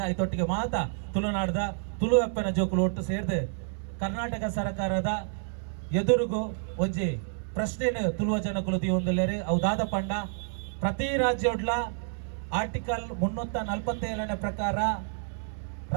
ಐತೊಟ್ಟಿಗೆ ಮಾತ ತುಳುನಾಡದ ತುಳು ಅಪ್ಪನ ಜೋಕುಲು ಒಟ್ಟು ಸೇರಿದು ಕರ್ನಾಟಕ ಸರ್ಕಾರದ ಎದುರುಗು ಒಂಜಿ ಪ್ರಶ್ನೆನ ತುಳುವ ಜನಕುಲು ದಿಯೊಂದುಲ್ಲೆರ್ ಅವು ದಾದ ಪಂಡ ಪ್ರತಿ ರಾಜ್ಯೋಡ್ಲ ಆರ್ಟಿಕಲ್ 347 ಪ್ರಕಾರ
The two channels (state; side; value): silent; left; 59 dB below the other